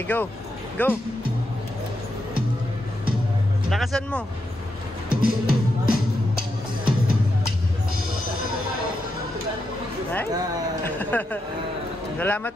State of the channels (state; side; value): normal; both; correlation 0.84